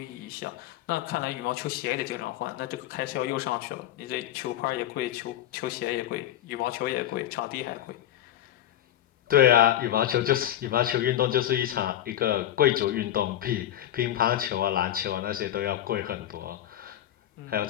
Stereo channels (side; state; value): right; quieter; 12.1 dB